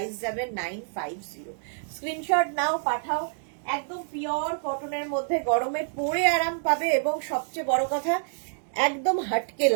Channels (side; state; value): left; silent; digital silence